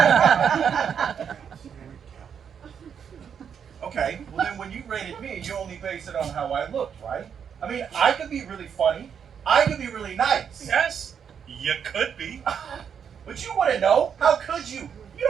Okay, well then when you rated me, you only base it on how I looked, right? I mean, I could be really funny. I could be really nice. Yes, you could be. But you wouldn't know. How could you? You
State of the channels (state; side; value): quieter; left; 7.5 dB